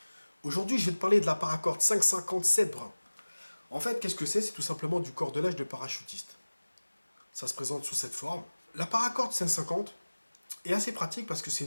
Aujourd'hui je vais te parler de la paracorde 557 brun. En fait qu'est-ce que c'est? C'est tout simplement du cordelage de parachutiste. Ça se présente sous cette forme. La paracorde 550 est assez pratique parce que c'est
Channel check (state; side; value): inverted; both; correlation -1.00